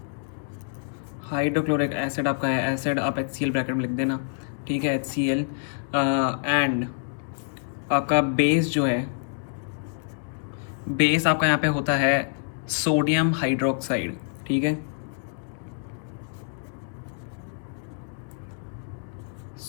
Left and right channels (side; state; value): right; silent; digital silence